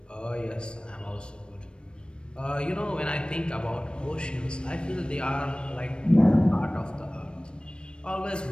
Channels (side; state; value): right; late; 0.055 ms